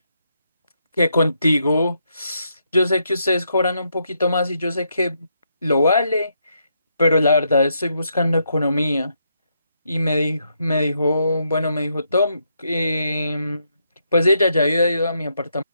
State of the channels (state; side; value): inverted; both; correlation -0.78